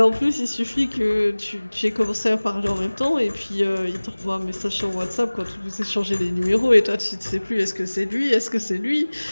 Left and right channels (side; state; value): both; inverted; correlation -1.00